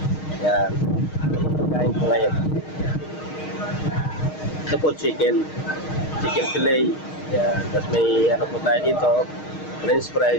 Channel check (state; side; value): late; right; 6.4 ms